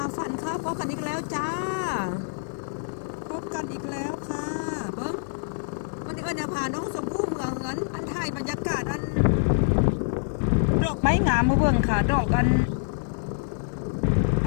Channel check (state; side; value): silent; right; 61 dB below the other